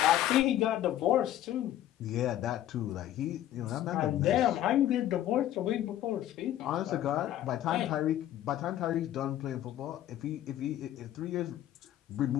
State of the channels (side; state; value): right; quieter; 12.5 dB